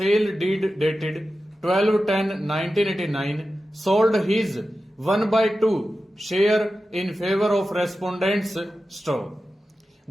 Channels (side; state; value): both; normal; correlation 0.93